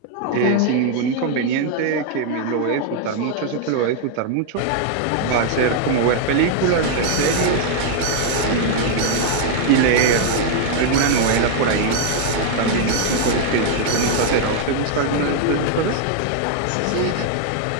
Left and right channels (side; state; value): both; different; correlation 0.00